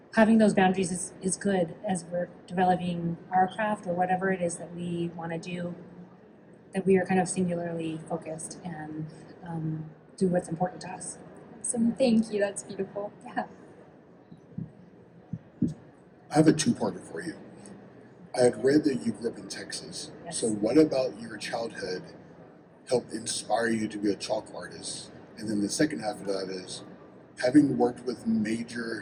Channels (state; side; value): identical; both; correlation 1.00